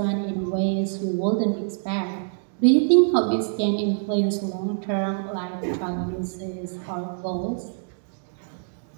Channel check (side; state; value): left; silent; digital silence